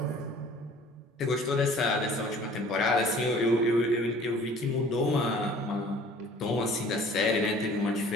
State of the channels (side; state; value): both; normal; correlation 0.50